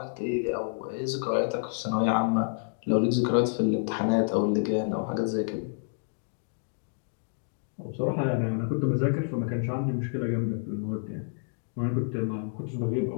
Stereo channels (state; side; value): silent; right; digital silence